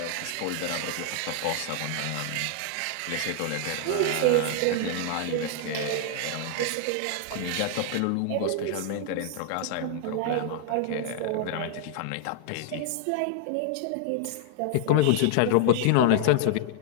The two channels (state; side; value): different; both; correlation -0.01